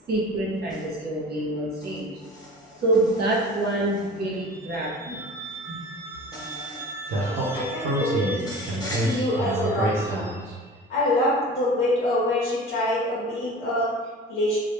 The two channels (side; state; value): both; normal; correlation 0.39